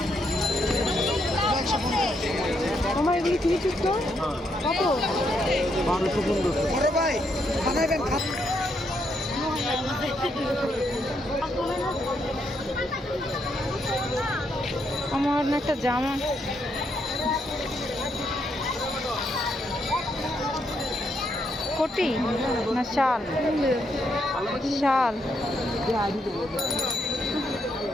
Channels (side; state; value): both; normal; correlation 0.77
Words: আমার এগুলি কিনেছিস তো কত 1215 ভাই বানাবেন আমার না একটা জামা কোটি না শাল শাল